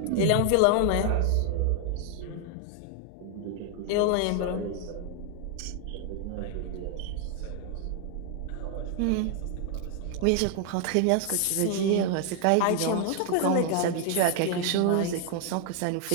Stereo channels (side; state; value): both; different; correlation 0.00